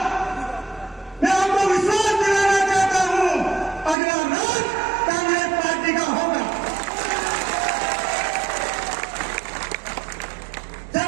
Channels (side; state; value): left; drops out; at 4.0 s